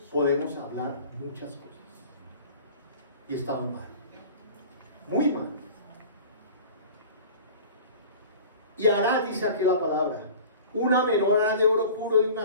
podemos hablar muchas cosas y estamos mal, muy mal. Y hará, dice aquí la palabra, una menorá de oro puro de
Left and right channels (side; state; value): both; inverted; correlation -0.41